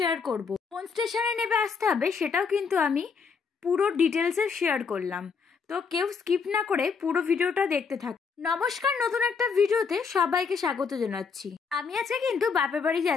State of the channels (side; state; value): right; quieter; 5.5 dB